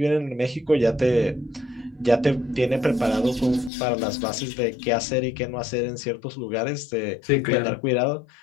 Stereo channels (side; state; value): right; drops out; at 3.7 s